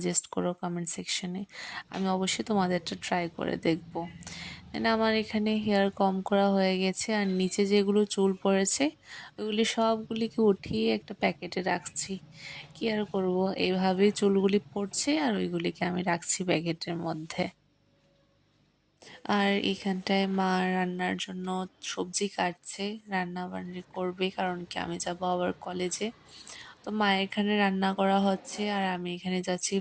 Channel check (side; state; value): both; identical; correlation 1.00